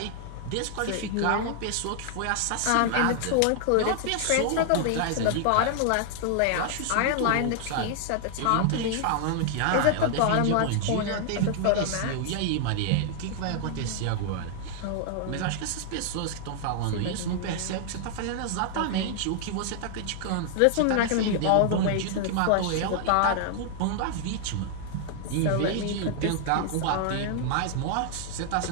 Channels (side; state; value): both; different; correlation 0.00